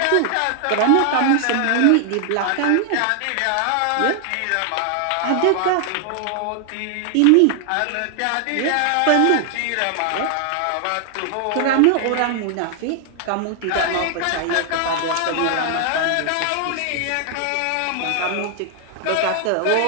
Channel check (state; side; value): different; both; correlation 0.00